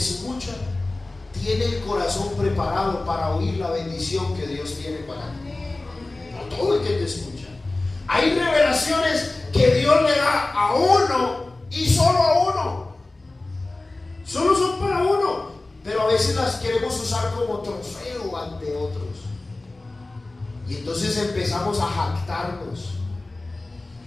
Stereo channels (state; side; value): quieter; right; 3.0 dB